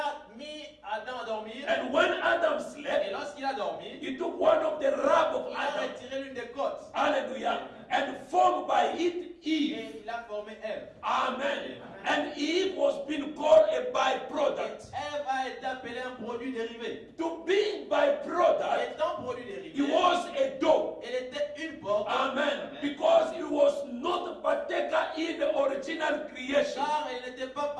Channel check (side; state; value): both; identical; correlation 1.00